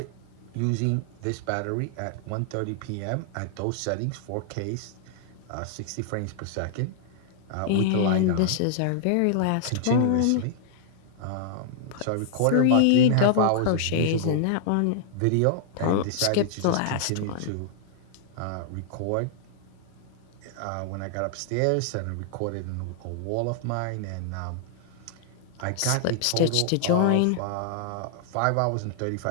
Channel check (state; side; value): different; both; correlation -0.01